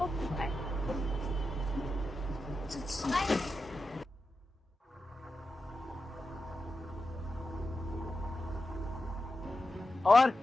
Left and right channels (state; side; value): normal; both; correlation 0.90